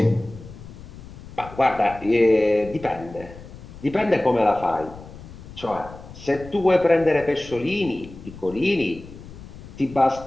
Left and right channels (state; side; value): noise; left; rumble, 16 dB below the sound